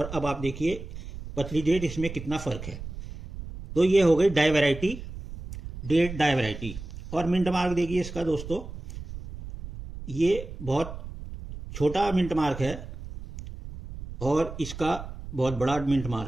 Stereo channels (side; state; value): right; noise; rumble, 11 dB below the sound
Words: अब आप देखिए पतली डेट, इसमें कितना फर्क है। तो ये हो गई die variety, date die variety. और मिंट मार्क देखिए इसका दोस्तों, ये बहुत छोटा मिंट मार्क है और इसका बहुत बड़ा मिंट